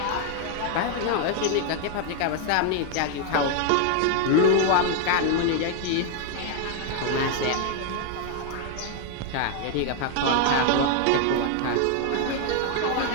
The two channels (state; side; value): different; both; correlation 0.00